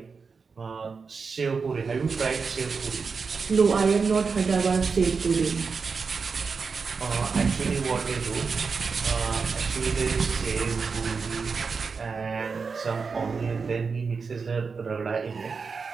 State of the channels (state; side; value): quieter; left; 5.1 dB